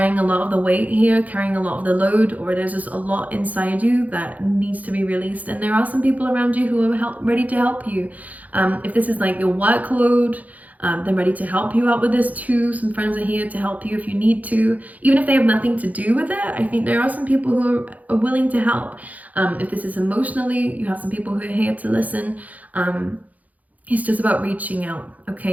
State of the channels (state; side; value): late; left; 0.077 ms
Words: a lot of the weight here, carrying a lot of the load, or there's just a lot inside you that needs to be released. And there are some people around you who are ready to help you. If this is like your workload, they're ready to help you out with this too. Some friends are here to help you if you need to, even if they have nothing to do with it. I think there are some people who are willing to help. If this is emotionally, you have some people who are here to listen. It's just about reaching out,